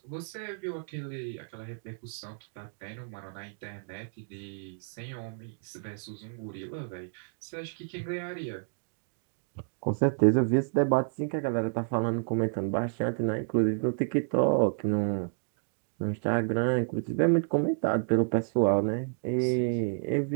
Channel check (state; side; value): silent; left; digital silence